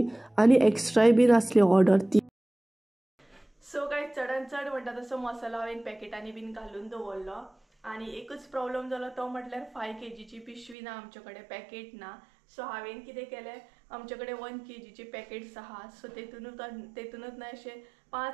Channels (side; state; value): left; drops out; at 10.8 s